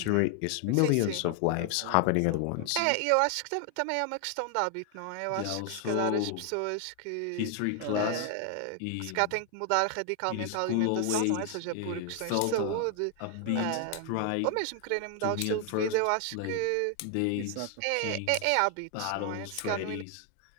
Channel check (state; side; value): different; both; correlation 0.00